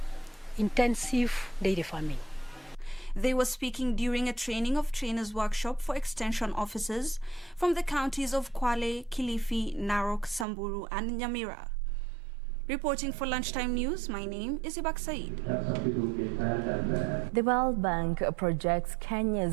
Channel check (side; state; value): left; drops out; at 10.5 s